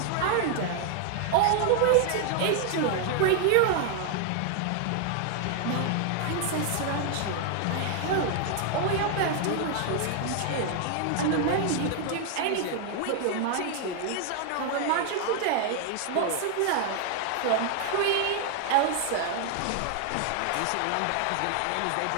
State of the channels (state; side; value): different; both; correlation 0.00